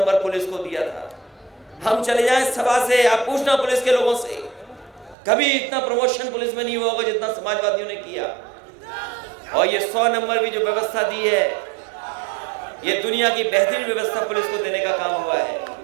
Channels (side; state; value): left; drops out; at 5.2 s